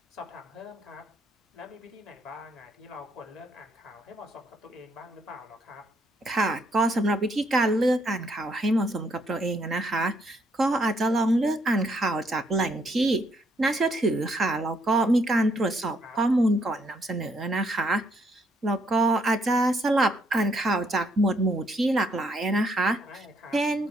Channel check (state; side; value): normal; both; correlation 0.71